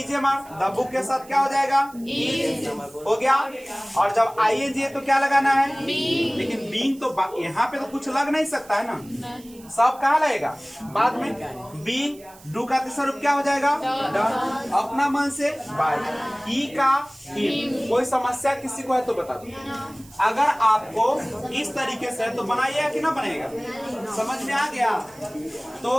मार, द बुक के साथ क्या हो जाएगा? इज हो गया। और जब आईएनजी है तो क्या लगाना है? लेकिन बीइंग तो यहाँ पे तो कुछ लग नहीं सकता है ना, सब कहाँ लगेगा? बाद में। बीइंग, डू का तीसरा रूप क्या हो जाएगा? डन। अपना मन से बाय, ही का हिम। कोई समस्या किसी को है तो बता दो। अगर आपको इस तरीके से तो बनाइएगा कि ना बनेगा? समझ में आ गया?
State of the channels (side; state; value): right; noise; hiss, 23 dB below the sound